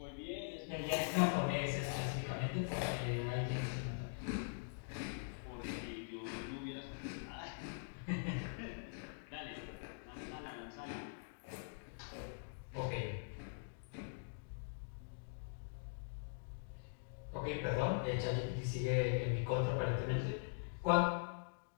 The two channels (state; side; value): silent; right; digital silence